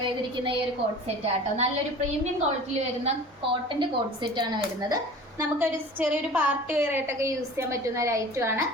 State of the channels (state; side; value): normal; both; correlation 0.41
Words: ചെയ്തിരിക്കുന്ന ഈ ഒരു കോട്ട് സെറ്റ് ആട്ടോ. നല്ലൊരു പ്രീമിയം ക്വാളിറ്റിയിൽ വരുന്ന കോട്ടന്റെ കോട്ട് സെറ്റ് ആണ് വരുന്നത്. നമുക്കൊരു ചെറിയൊരു പാർട്ടി വെയർ ആയിട്ടൊക്കെ യൂസ് ചെയ്യാൻ പറ്റുന്ന ഒരു ഐറ്റം ആണ്.